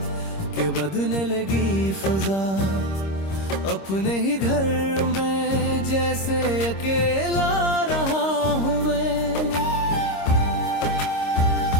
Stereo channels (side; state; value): right; late; 26 ms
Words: के बदलने लगी फजा, अपने ही घर में जैसे अकेला रहा हूँ मैं।